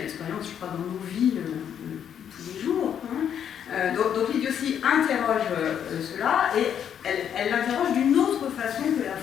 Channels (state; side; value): quieter; right; 8.8 dB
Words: je crois, dans nos vies tous les jours. Donc l'idiotie interroge cela, et elle l'interroge d'une autre façon que la